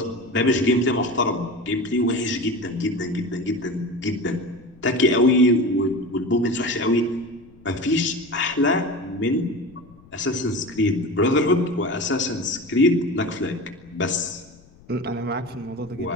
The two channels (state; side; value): noise; left; rumble, 25 dB below the sound